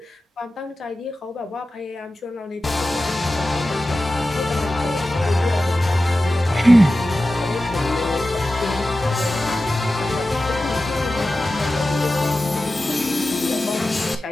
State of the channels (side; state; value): both; normal; correlation 0.94